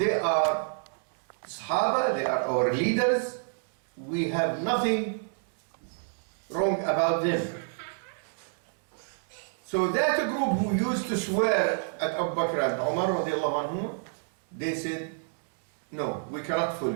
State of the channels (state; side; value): silent; left; digital silence